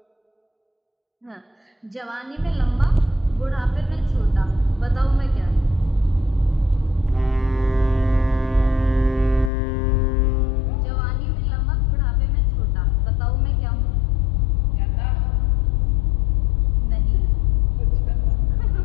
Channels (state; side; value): drops out; right; at 9.5 s